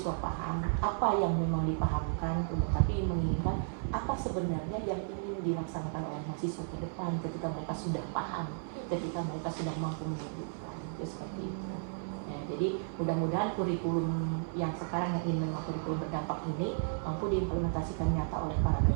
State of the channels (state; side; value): silent; left; 55 dB below the other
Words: paham apa yang memang dipahamkan, tapi menginginkan apa sebenarnya yang ingin dilaksanakan oleh mahasiswa ke depan ketika mereka sudah paham, ketika mereka sudah mampu menghidupkan itu seperti itu. Ya, jadi mudah-mudahan kurikulum yang sekarang yang ini memang kurikulum berdampak ini mampu diimplementasikan nyata oleh para